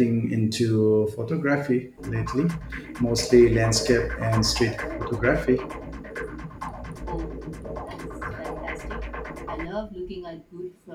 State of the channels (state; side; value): identical; both; correlation 1.00